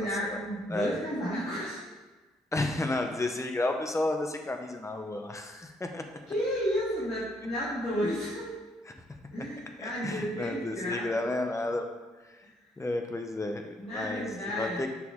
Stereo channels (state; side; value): normal; both; correlation 0.71